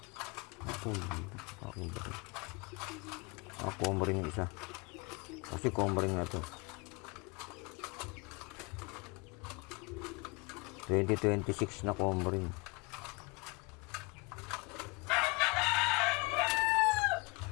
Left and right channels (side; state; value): right; quieter; 26.9 dB